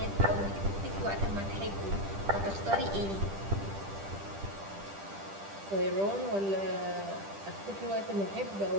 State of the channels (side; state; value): left; late; 10 ms